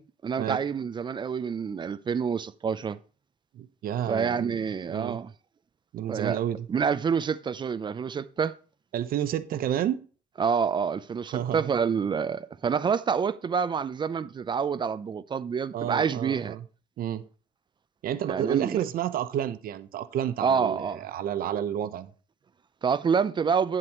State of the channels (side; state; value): left; quieter; 6.9 dB